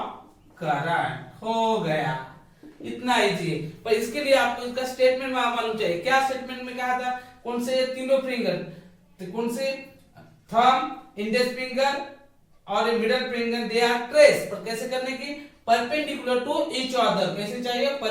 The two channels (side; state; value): both; identical; correlation 1.00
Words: current। हो गया, इतना easy है। पर इसके लिए आपको इसका statement मालूम चाहिए। क्या स्टेटमेंट में कहा था, कौन से तीनों फिंगर, तो कौन से, थंब, इंडेक्स फिंगर और middle finger, they are trace, पर कैसे करने की, परपेंडिकुलर टू ईच अदर, कैसे चाहिए,